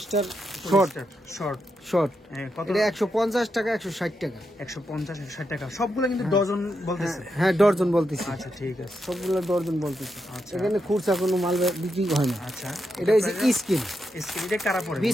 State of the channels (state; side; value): normal; both; correlation 0.84